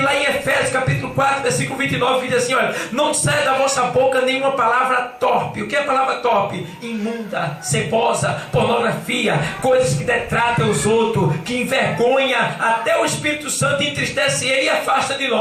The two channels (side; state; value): both; identical; correlation 1.00